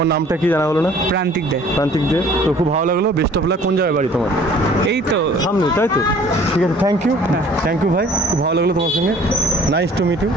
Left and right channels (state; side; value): normal; both; correlation 0.52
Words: নামটা কি জানা হলো না? প্রান্তিক দে। তো খুব ভালো লাগলো, বেস্ট অফ লাক। কোন জায়গায় বাড়ি তোমার? এই তো সামনে, তাই তো? ঠিক আছে, থ্যাংক ইউ ভাই, খুব ভালো লাগলো তোমার সঙ্গে। Nice to meet you.